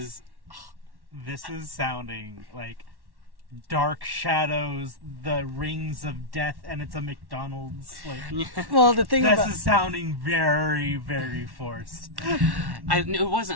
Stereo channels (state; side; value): late; left; 1.1 ms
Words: This is sounding like Dark Shadows, the Rings of Death, and it's a McDonald's. Like, Well, the thing this about is sounding very, very forced. It